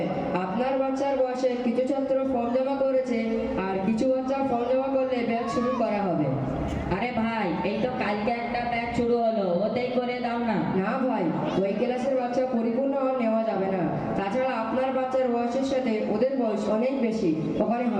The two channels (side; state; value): both; identical; correlation 1.00